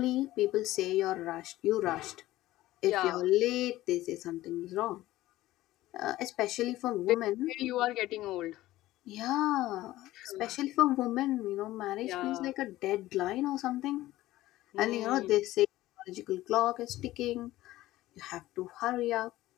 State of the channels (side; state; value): right; quieter; 16.2 dB